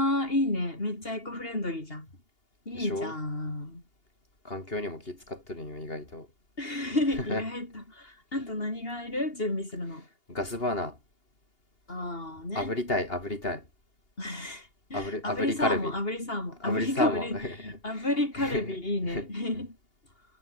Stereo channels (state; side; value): late; right; 2.8 ms